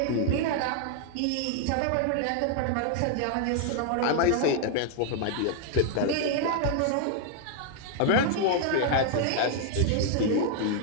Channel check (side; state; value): both; different; correlation 0.00